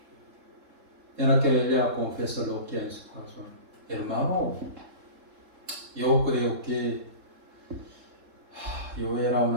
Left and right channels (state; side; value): late; left; 3.7 ms